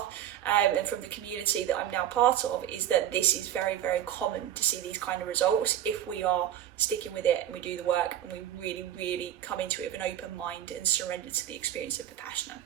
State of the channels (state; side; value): quieter; left; 11.4 dB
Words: and from the community that I'm now part of, is that this is very, very common to see these kind of results if we are sticking with it and we do the work and we really, really come into it with an open mind and surrender to the experience of Vipassana.